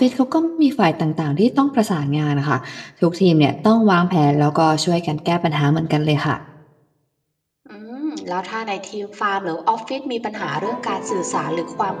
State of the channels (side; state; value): both; identical; correlation 1.00